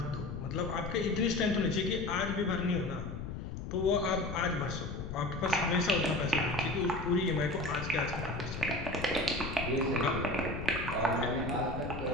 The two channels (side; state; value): left; noise; rumble, 7 dB below the sound